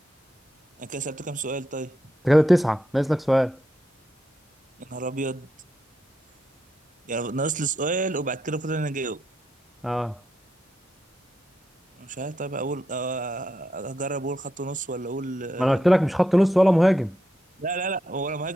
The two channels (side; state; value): both; normal; correlation 0.83